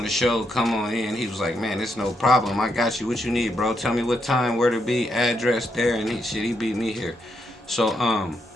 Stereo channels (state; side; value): normal; both; correlation 0.80